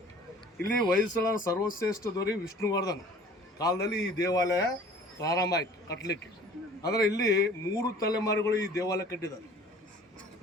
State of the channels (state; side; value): normal; both; correlation 0.49